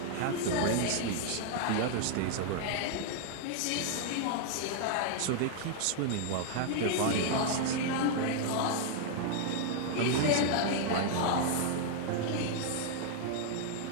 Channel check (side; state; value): both; different; correlation 0.00